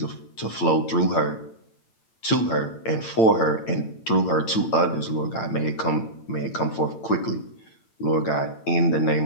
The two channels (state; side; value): late; right; 8.9 ms